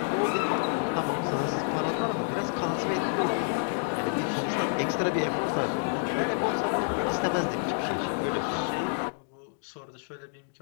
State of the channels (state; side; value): silent; right; digital silence